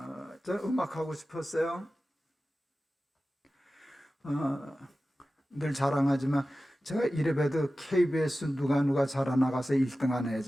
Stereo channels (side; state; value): both; normal; correlation 0.95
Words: 저 음악하고 싶었어요. 늘 자랑하지만 제가 이래봬도 KBS 누가 자라나가서 1등 한